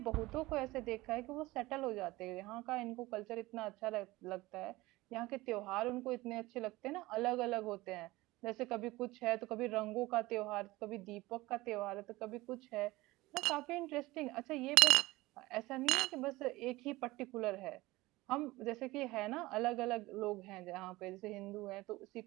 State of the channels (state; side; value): quieter; left; 19.8 dB